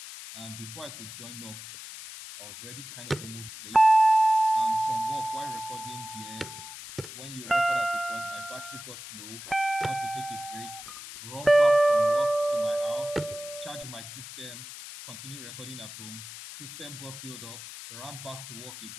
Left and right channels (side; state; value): left; noise; hiss, 12 dB below the sound